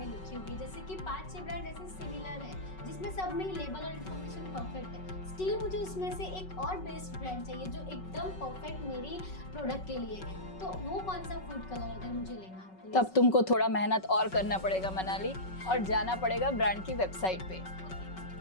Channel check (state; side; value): late; right; 5.3 ms